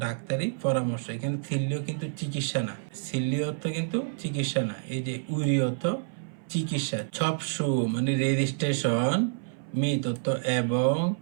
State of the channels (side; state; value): left; silent; 57 dB below the other